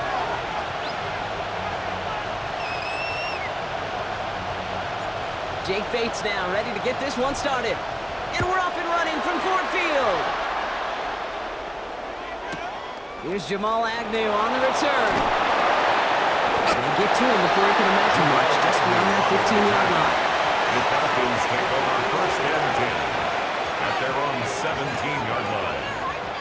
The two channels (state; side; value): identical; both; correlation 1.00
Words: Jake Bates now ready to get this one started. And we're off and running from Ford Field. Here's Jamal Agnew on the return. They get to him before he can amount to much, just beyond that 15-yard line. The Falcons take over first and 10 at their own 17-yard line.